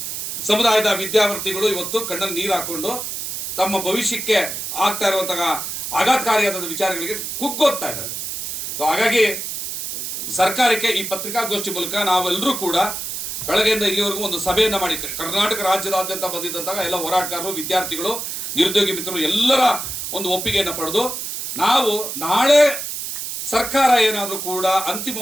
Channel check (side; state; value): right; noise; hiss, 5 dB below the sound